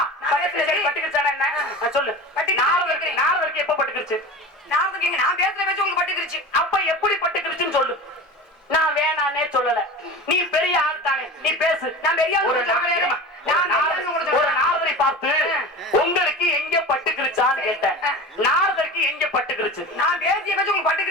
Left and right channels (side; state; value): both; normal; correlation 0.32